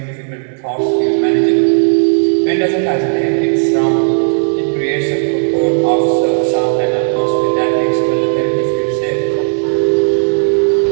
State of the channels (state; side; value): silent; left; 62 dB below the other